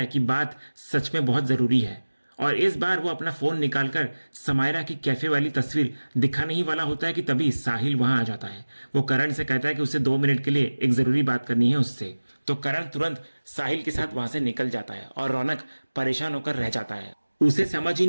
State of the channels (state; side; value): inverted; both; correlation -1.00